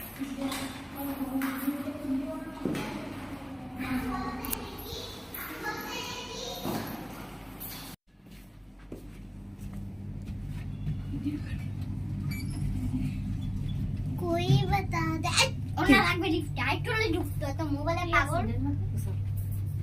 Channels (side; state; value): both; identical; correlation 1.00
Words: कोई बता दे ওনা লাগবে লিফট আইটলে ঢুকতো তো মোবাইলে পাগল